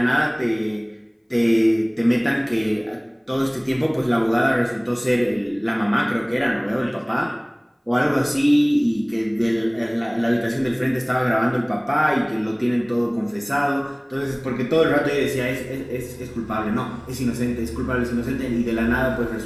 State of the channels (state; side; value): identical; both; correlation 1.00